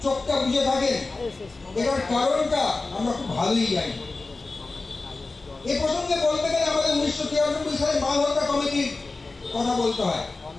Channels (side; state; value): right; quieter; 3.6 dB